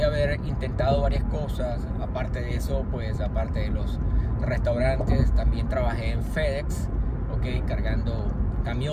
haber intentado varias cosas, aparte de eso, pues aparte de los restaurantes, también trabajé en FedEx, cargando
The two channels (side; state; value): both; identical; correlation 1.00